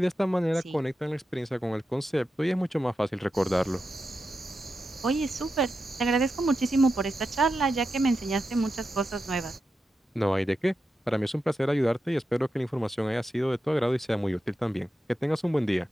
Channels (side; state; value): both; normal; correlation 0.89